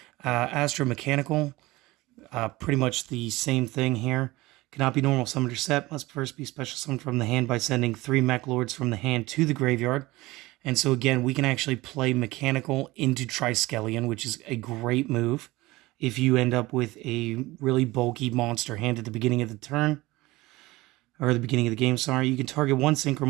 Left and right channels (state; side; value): quieter; left; 19.9 dB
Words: Astro Mechanical, pretty much the same thing here. Cannot be normal summoned or set. Must first be special summoned from the hand by sending 3 Meklords from the hand to the graveyard. And so again, we can actually play Mechanical into Triskelion, which is a great move if you end up with a really bulky monster hand at the beginning of the turn. Or the beginning of the game, sorry. You can target 1 Synchro